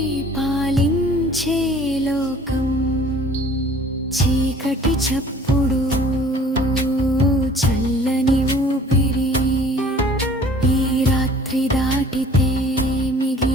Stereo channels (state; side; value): normal; both; correlation 0.51